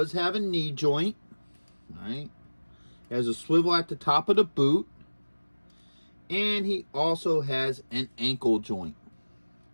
have a knee joint. All right, he has a swivel at the top of the boot. And he also has an ankle joint.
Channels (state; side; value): inverted; both; correlation -1.00